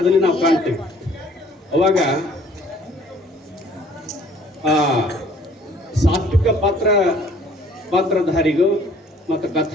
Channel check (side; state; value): both; normal; correlation 0.57